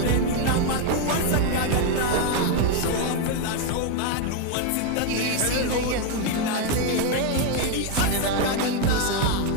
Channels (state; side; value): different; both; correlation 0.01